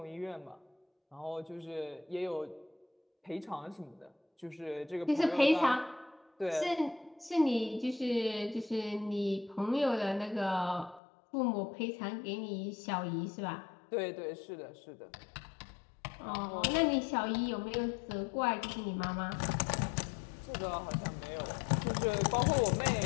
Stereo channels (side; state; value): right; drops out; at 11.0 s